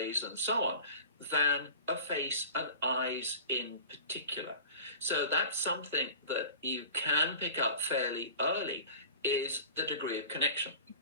and so on than a face and eyes in particular. So that's something that you can pick up fairly early, is the degree of connection.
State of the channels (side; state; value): both; inverted; correlation -0.39